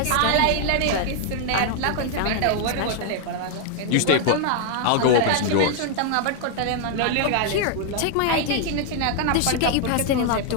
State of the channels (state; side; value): different; both; correlation 0.00